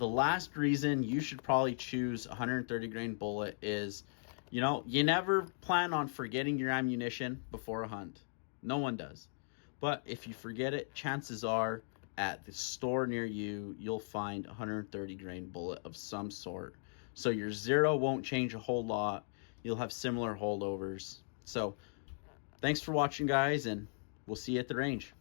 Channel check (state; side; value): silent; right; digital silence